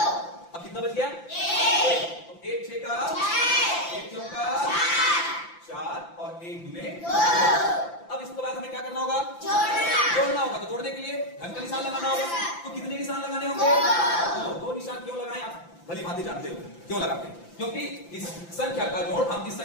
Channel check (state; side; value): late; right; 5.9 ms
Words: अब कितना बच गया? 1। 1 6 का 1 चौक का 4 और 1 दूने 2। अब इसके बाद हमें क्या करना होगा? जोड़ना होगा। तो जोड़ने के लिए धन का निशान लगाना होगा। तो कितने निशान लगाने होंगे? 2 निशान। क्यों लगाएं? आप भली भांति जानते हो क्यों लगाते हैं, क्योंकि इस संख्या का जोड़ हम इस